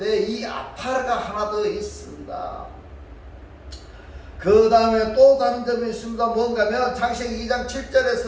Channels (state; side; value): identical; both; correlation 1.00